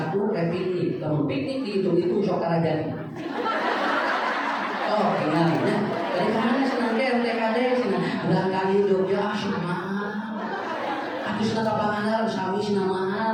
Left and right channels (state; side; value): identical; both; correlation 1.00